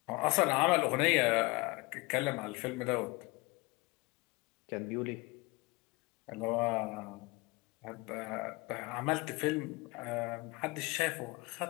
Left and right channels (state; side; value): quieter; right; 24.5 dB